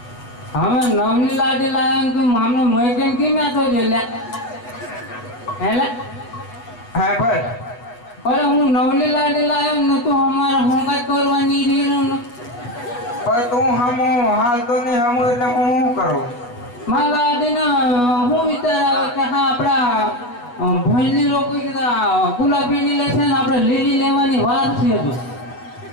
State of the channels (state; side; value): late; right; 8.3 ms